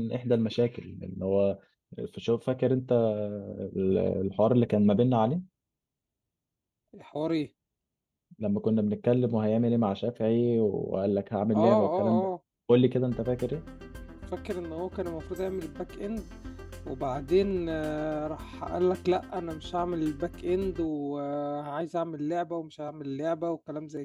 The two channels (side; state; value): both; identical; correlation 1.00